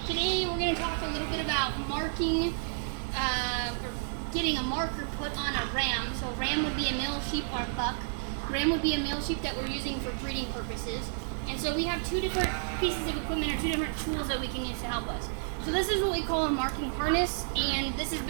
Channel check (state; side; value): silent; left; digital silence